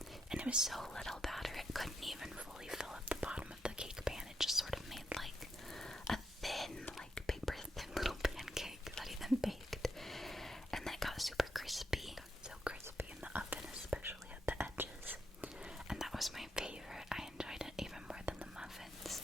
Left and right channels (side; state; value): both; normal; correlation 0.81